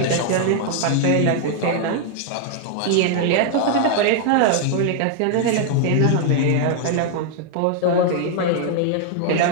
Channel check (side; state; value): both; different; correlation 0.00